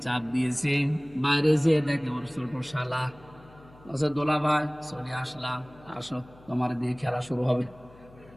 চাপ দিয়েছে, বাইরে যেয়ে দেখে ওর ছোট শালা। বলছে দোলা ভাই চলে আসলাম, আসো তোমার দিয়ে খেলা শুরু হবে।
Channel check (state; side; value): noise; left; hum, 23 dB below the sound